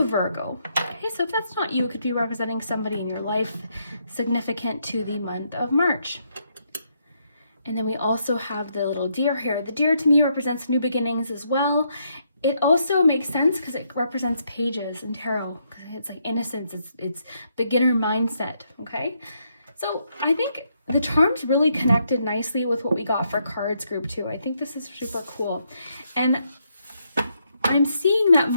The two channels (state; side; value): inverted; both; correlation -0.76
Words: Virgo. Okay, so if that's not you, it could be representing somebody in your life significant to the month of March. And then we also have the little deer here. The deer to me represents new beginnings as well. It also makes sense because it represents pages in tarot. It's like innocence, it's beginner mindset, okay? So I think the charms really connected nicely with what we got for cards group 2. I think this is super cool. And I'm seeing that